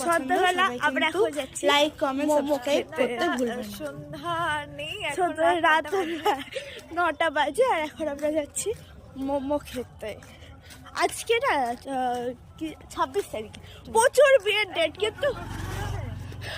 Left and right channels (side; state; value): both; identical; correlation 1.00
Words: সবাই আমরা কিন্তু এখন যাচ্ছি লাইক কমেন্ট মোমো সাবস্ক্রাইব খেতে। করতে ভুলবেন না। সন্ধ্যা নেই, এখন রাত 9টা বাজে আর এখন আমরা যাচ্ছি মোমো খেতে। আজকে না 26 তারিখ, প্রচুর বিয়ের ডেট, কিন্তু